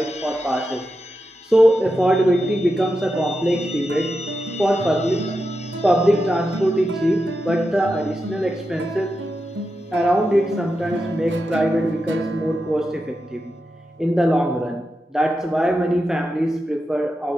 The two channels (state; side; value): normal; both; correlation 0.89